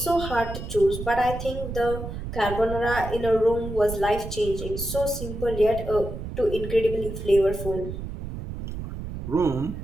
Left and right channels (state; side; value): noise; right; rumble, 8 dB below the sound